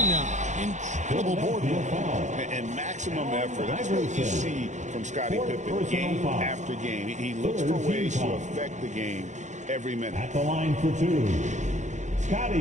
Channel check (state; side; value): late; left; 0.35 ms